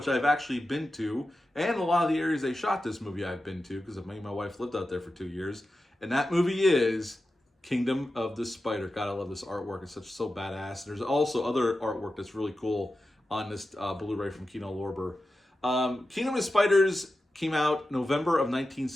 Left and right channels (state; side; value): normal; both; correlation 0.92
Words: I've actually been to. And a lot of the areas they shot this movie I've been to because me and my wife lived out there for 2 years. And that movie is Kingdom of the Spider. God, I love this artwork. It's so badass. There's also other artwork that's really cool on this Blu-ray from Kino Lorber. Kingdom of the Spiders came out November of